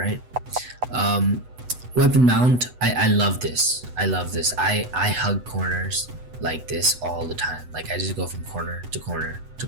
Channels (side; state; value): left; late; 8.0 ms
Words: Weapon mount, I love this. I hug corners like this all the time. Like I just go from corner to corner to